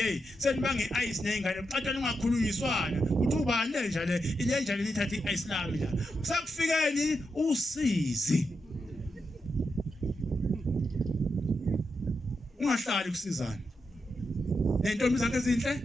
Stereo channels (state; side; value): normal; both; correlation 0.85